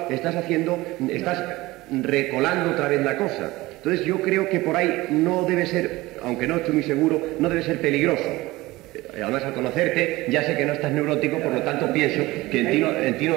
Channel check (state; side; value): quieter; left; 19.6 dB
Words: estás recolando otra vez la cosa. Entonces yo creo que por ahí no debe ser, aunque no estoy muy seguro, no debe ser peligroso. Además, al conocerte, ya sé que no estás neurótico, por lo tanto pienso que en ti